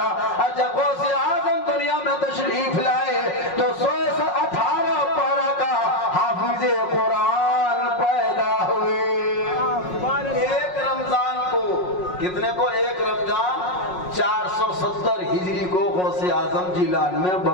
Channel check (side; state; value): right; late; 5.5 ms